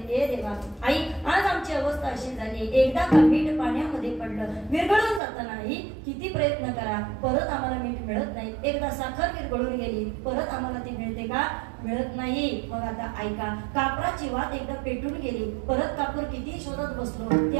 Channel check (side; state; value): left; drops out; at 5.2 s